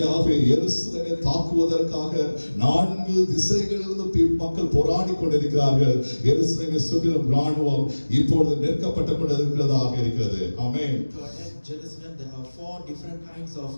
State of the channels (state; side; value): inverted; both; correlation -1.00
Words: எருசலேமை தாக்குவதற்காக 4 திசைகளிலிருந்து மக்கள் போராடி கொண்டிருக்கிறார்கள். எருசலேமை சுற்றிலும் ராணுவம் இப்பொழுது நெருக்கப்பட்டு கொண்டிருக்கிறதாக இருக்கிறது. ஆமென். To attack Jerusalem, there are 4 different kinds of